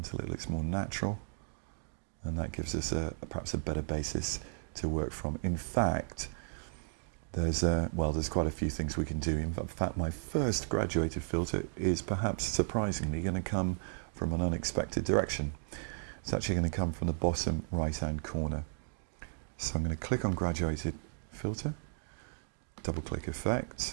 it looks more natural, and that gives us perhaps a better basis to work from. In fact, there's quite a few things we can do. In fact, my first graduated filter is perhaps surprisingly going to come from an unexpected direction. It's actually going to come from the bottom right-hand corner. So I'm going to click on graduated filter, double click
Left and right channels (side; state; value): left; silent; digital silence